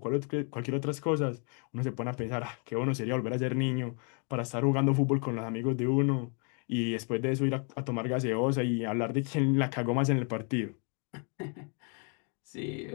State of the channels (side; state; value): right; quieter; 39.5 dB